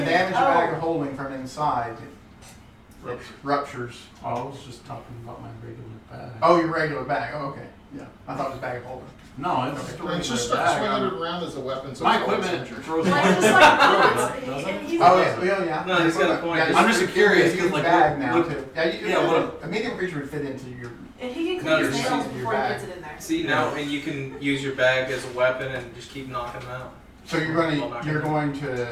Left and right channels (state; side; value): identical; both; correlation 1.00